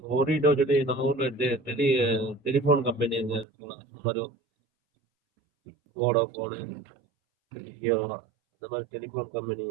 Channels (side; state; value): left; drops out; at 3.5 s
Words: ஓரிடோ சொல்லி நம்ம ஊரில் டெலிஃபோன் கம்பெனி அங்கே இருக்கலாம். இந்த மாதிரி வோடாஃபோனு ஜியோ இந்த மாதிரி டெலிஃபோன் கம்பெனி